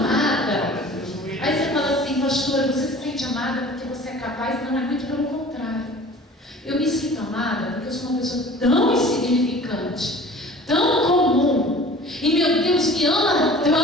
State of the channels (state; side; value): normal; both; correlation 0.44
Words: Aí você fala assim: pastora, você se sente amada porque você é capaz? Não, é muito pelo contrário. Eu me sinto amada porque eu sou uma pessoa tão insignificante, tão comum, e meu Deus me ama